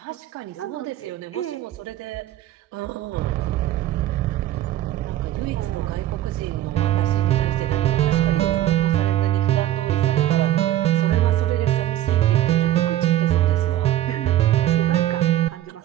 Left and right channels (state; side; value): quieter; left; 13.2 dB